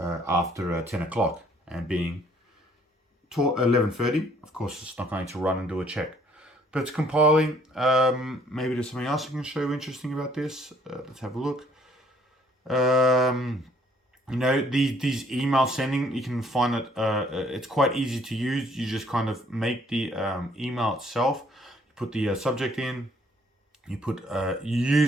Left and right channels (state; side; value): normal; both; correlation 0.62